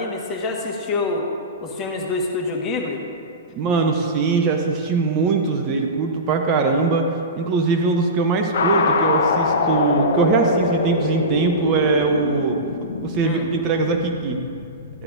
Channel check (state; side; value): normal; both; correlation -0.20